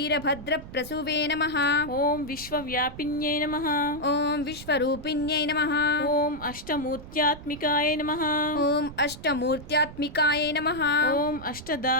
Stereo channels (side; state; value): right; noise; rumble, 15 dB below the sound